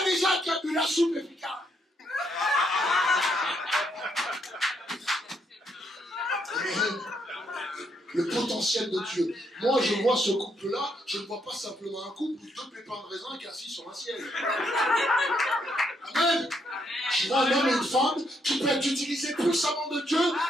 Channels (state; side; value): normal; both; correlation 0.75